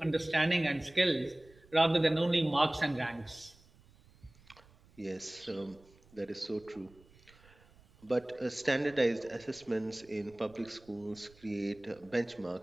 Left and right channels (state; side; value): noise; right; rumble, 27 dB below the sound